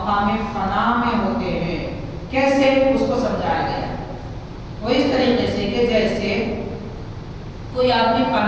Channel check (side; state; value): both; identical; correlation 1.00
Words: فنا میں ہوتے ہیں۔ کیسے؟ اس کو سمجھایا گیا وہ اس طریقے سے کہ جیسے کوئی آدمی